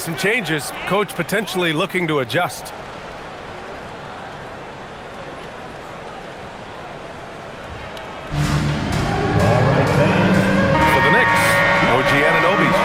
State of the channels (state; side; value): identical; both; correlation 1.00